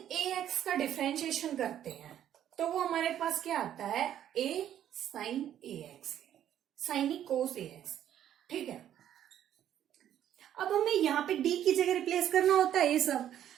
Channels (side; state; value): left; quieter; 10.8 dB